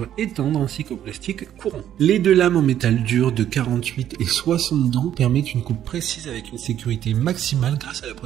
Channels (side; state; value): left; quieter; 10.9 dB